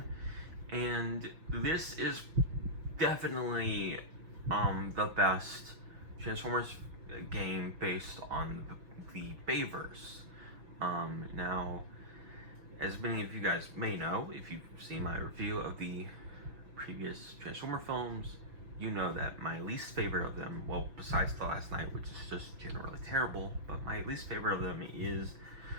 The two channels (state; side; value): late; left; 6.0 ms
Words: and this is definitely the best Transformers game based on the Bayverse. Now, as many of you guys may know, if you've seen my review of the previous Transformer films, you know that my least favorite of them, well, besides The Last Night, which is just generally terrible, but my least favorite of them is